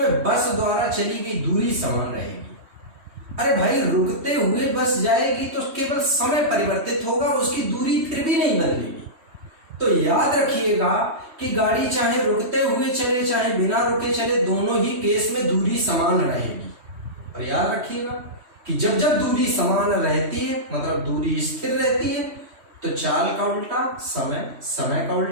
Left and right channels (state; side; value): late; left; 3.1 ms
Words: बस द्वारा चली गई दूरी समान रहेगी। अरे भाई रुकते हुए बस जाएगी तो केवल समय परिवर्तित होगा, उसकी दूरी फिर भी नहीं बदलेगी। तो याद रखिएगा कि गाड़ी चाहे रुकते हुए चले चाहे बिना रुके चले, दोनों ही केस में दूरी समान रहेगी। और याद रखिएगा कि जब जब दूरी समान रहती है मतलब दूरी स्थिर रहती है तो चाल का उल्टा समय, समय का